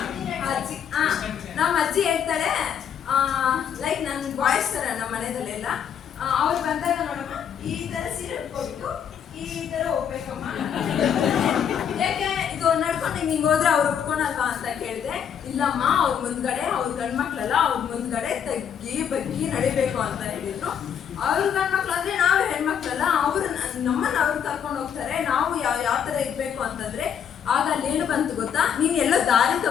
ನಮ್ಮ ಅಜ್ಜಿ ಹೇಳ್ತಾಳೆ, ಲೈಕ್ ನನ್ನ ಬಾಯ್ಸ್ ತರ ನಮ್ಮ ಮನೆಯಲ್ಲೆಲ್ಲ ಅವ್ರು ಬಂದಾಗ ನೋಡಮ್ಮ ಈ ತರ ಸೀರೆ ಉಟ್ಕೋಬೇಕು, ಈ ತರ ಹೋಗ್ಬೇಕಮ್ಮ, ಯಾಕೆ ಇದು ನಡ್ಕೊಂಡು ಹಿಂಗೆ ಹೋದ್ರೆ ಅವ್ರು ಉಟ್ಕೊಳಲ್ವಾ ಅಂತ ಕೇಳಿದೆ. ಇಲ್ಲಮ್ಮ ಅವ್ರ ಮುಂದ್ಗಡೆ ಅವ್ರ ಗಂಡ್ಮಕ್ಳಲ್ಲ, ಅವ್ರ ಮುಂದ್ಗಡೆ ತಗ್ಗಿ ಬಗ್ಗಿ ನಡಿಬೇಕು ಅಂತ ಹೇಳಿದ್ರು. ಅವ್ರ ಗಂಡ್ಮಕ್ಳು ಅಂದ್ರೆ ನಾವು ಹೆಣ್ಮಕ್ಳಲ್ಲ, ಅವ್ರು ನಮ್ಮನ್ನ ಅವ್ರು ಕರ್ಕೊಂಡು ಹೋಗ್ತಾರೆ, ನಾವು ಯಾವ ತರ ಇರ್ಬೇಕು ಅಂತಂದ್ರೆ ಆಗ ಅಲ್ಲೇನು ಬಂತು ಗೊತ್ತಾ, ನೀನ್ ಎಲ್ಲೋ ದಾರಿ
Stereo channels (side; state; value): right; quieter; 8.2 dB